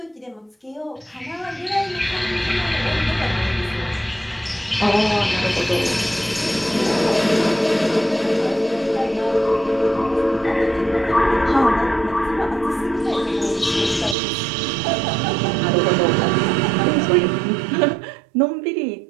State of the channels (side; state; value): left; drops out; at 14.2 s